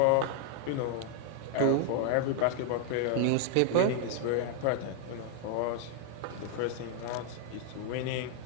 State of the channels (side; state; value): both; different; correlation 0.00